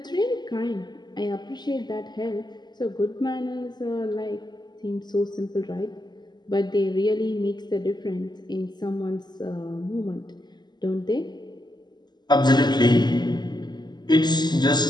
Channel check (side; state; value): right; late; 0.21 ms